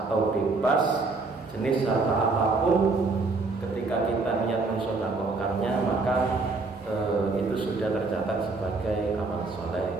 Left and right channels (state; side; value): quieter; left; 3.7 dB